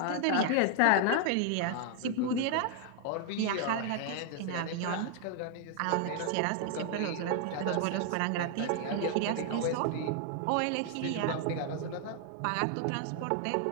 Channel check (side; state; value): both; different; correlation 0.00